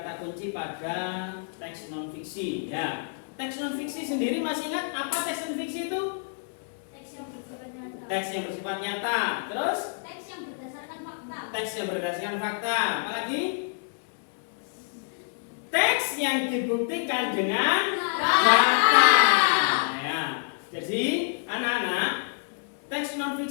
kunci pada teks non fiksi, ya. Teks non fiksi sendiri masih ingat apa teks non fiksi itu? Teks yang bersifat nyata. Teks yang bersifat nyata. Terus Teks yang berdasarkan fakta. Teks yang berdasarkan fakta. Apalagi? Teks yang dibuktikan dengan fakta. Ya. Jadi anak-anak, teks non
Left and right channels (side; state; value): right; silent; digital silence